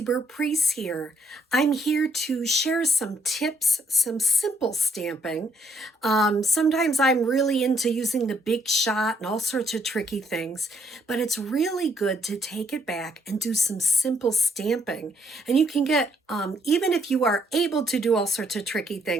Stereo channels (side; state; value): both; normal; correlation 0.70